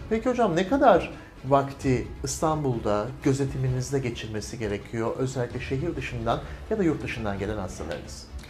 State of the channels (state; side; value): identical; both; correlation 1.00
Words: Peki hocam, ne kadar vakti İstanbul'da gözetiminizde geçirmesi gerekiyor, özellikle şehir dışından ya da yurt dışından gelen hastalarınız?